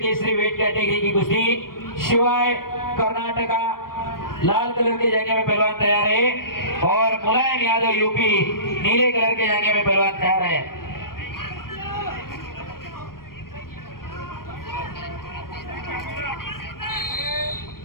वेट कैटेगरी की कुश्ती शिवाय कर्नाटका लाल कलर के जंगे में पहलवान तैयार है और मुलायम यादव यूपी नीले कलर के जंगे में पहलवान तैयार है।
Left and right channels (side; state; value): right; late; 0.92 ms